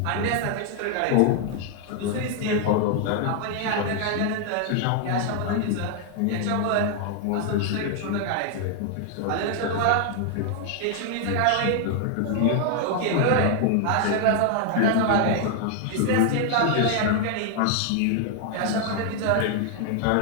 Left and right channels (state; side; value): different; both; correlation 0.00